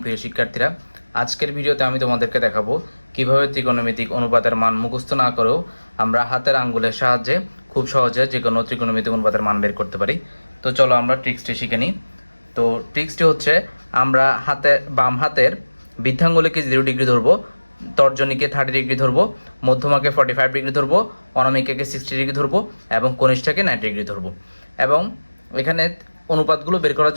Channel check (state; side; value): inverted; both; correlation -1.00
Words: প্রিয় শিক্ষার্থীরা, আজকের ভিডিওতে আমি তোমাদেরকে দেখাবো কিভাবে ত্রিকোণমিতিক অনুপাতের মান মুখস্থ না করেও আমরা হাতের আঙ্গুলের সাহায্যে খুব সহজে যে কোনো ত্রিকোণমিতিক অনুপাতের মান বের করতে পারি। তো চলো আমরা ট্রিক্সটি শিখে নিই। তো ট্রিক্সটি হচ্ছে, আমরা বাম হাতের বৃদ্ধাঙ্গুলিকে 0 ডিগ্রি ধরবো, তর্জনীকে 30 ডিগ্রি ধরবো, মধ্যমাকে 45 ডিগ্রি ধরবো, অনামিকাকে 60 ডিগ্রি ধরবো এবং কনিষ্ঠাকে 90 ডিগ্রি ধরবো। এবং এখানে অনুপাতগুলো বের করার